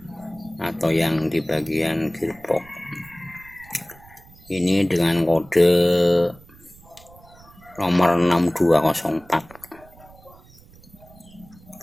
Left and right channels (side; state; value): right; noise; rumble, 24 dB below the sound